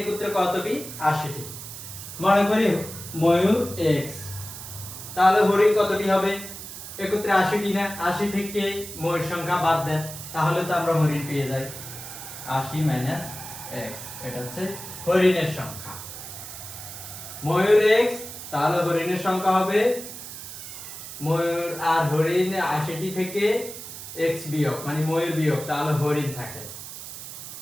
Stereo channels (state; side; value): noise; right; hiss, 11 dB below the sound